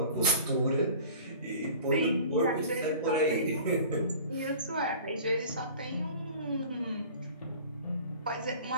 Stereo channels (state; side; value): inverted; both; correlation -0.43